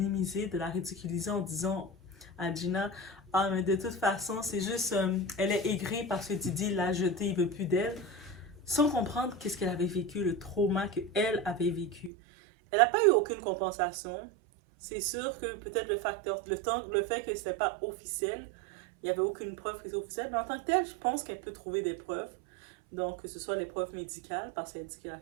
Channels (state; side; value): drops out; left; at 12.1 s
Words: de la ridiculiser en disant à Gina, ah, mais de toute façon, c'est juste, elle est aigrie parce que Didi l'a jetée, il veut plus d'elle, sans comprendre qu'est-ce qu'elle avait vécu, le trauma qu'elle avait vécu. Elle n'a pas eu aucune compensation. C'est sûr que peut-être le fait que c'était pas officiel, il n'y avait aucune preuve que c'était officiel, mais en tant que tel, je pense qu'elle peut trouver des preuves. Donc, que ce soit les preuves médicales, parce qu'elle dit qu'elle a